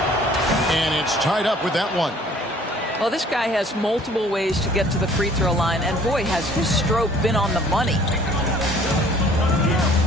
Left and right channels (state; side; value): normal; both; correlation 0.55